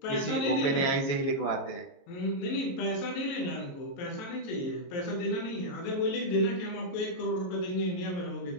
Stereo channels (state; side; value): late; right; 22 ms